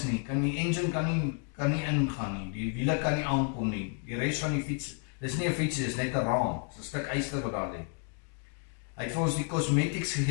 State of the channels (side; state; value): right; quieter; 39.2 dB